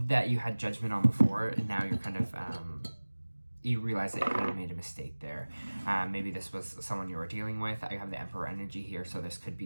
you had judgment on before, and now you're kind of you realize that you kind of made a mistake there. Maybe this was someone you were dealing with. I have the Emperor energy here, so this could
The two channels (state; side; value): inverted; both; correlation -1.00